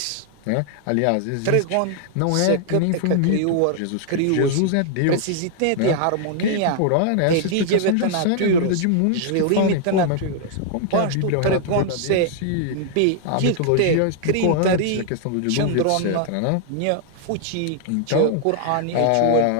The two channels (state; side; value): different; both; correlation 0.00